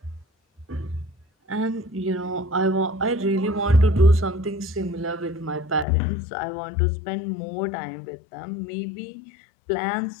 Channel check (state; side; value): drops out; right; at 5.9 s